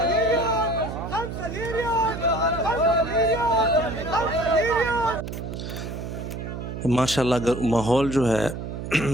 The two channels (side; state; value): right; noise; hum, 7 dB below the sound